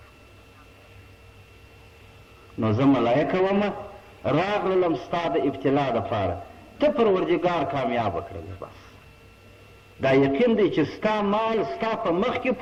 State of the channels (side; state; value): both; identical; correlation 1.00